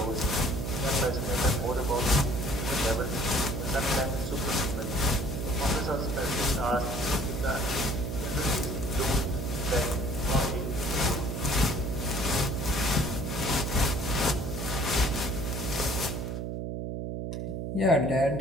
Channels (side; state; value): right; noise; hum, 4 dB below the sound